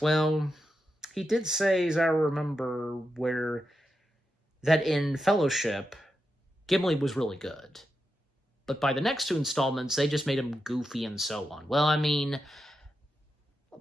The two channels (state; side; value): normal; both; correlation 0.88